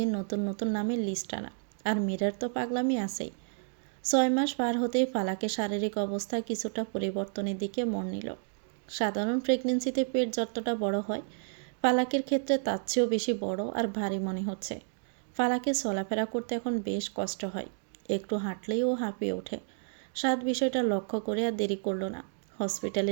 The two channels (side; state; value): left; silent; 57 dB below the other